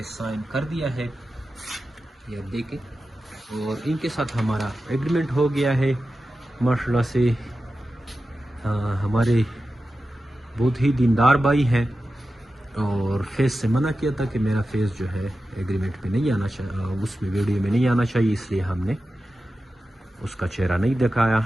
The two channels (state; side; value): normal; both; correlation 0.92